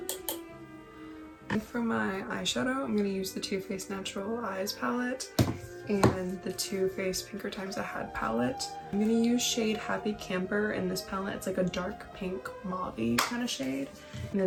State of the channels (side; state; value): both; identical; correlation 1.00